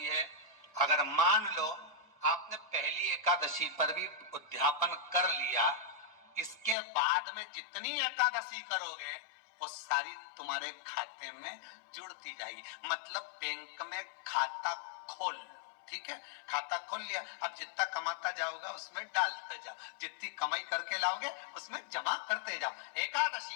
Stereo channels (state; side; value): drops out; right; at 6.8 s